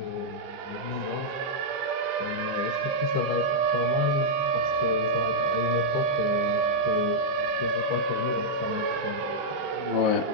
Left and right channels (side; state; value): left; late; 15 ms